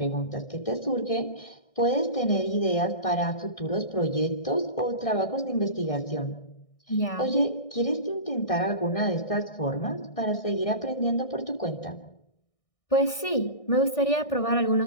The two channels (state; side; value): late; right; 1.6 ms